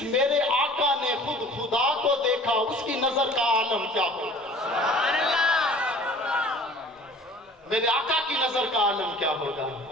میرے آقا نے خود خدا کو دیکھا، اس کی نظر کا عالم کیا ہوگا؟ میرے آقا کی نظر کا عالم کیا ہوگا؟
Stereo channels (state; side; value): normal; both; correlation 0.48